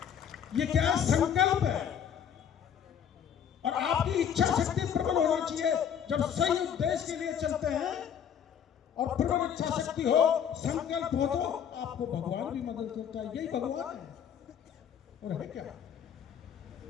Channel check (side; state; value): right; quieter; 8.4 dB